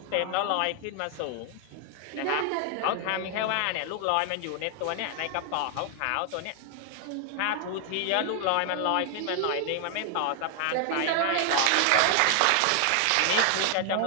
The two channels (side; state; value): both; different; correlation 0.00